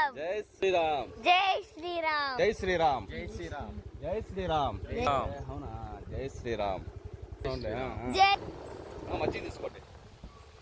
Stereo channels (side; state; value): both; identical; correlation 1.00